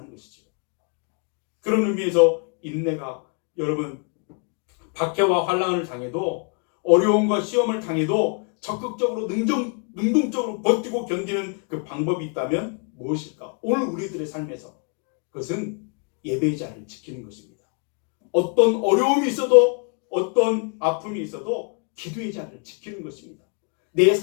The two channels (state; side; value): quieter; right; 39.7 dB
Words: 것이죠. 그런 의미에서 인내가 여러분 박해와 환난을 당해도 어려움과 시험을 당해도 적극적으로 능동적으로 버티고 견디는 그 방법이 있다면 무엇일까? 오늘 우리들의 삶에서 그것은 예배의 자리를 지키는 것입니다. 어떤 어려움이 있어도 어떤 아픔이 있어도 기도의 자리를 지키는 것입니다. 내